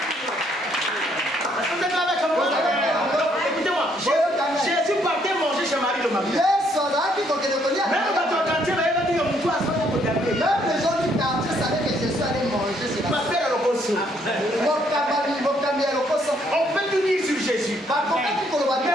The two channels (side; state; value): both; normal; correlation 0.69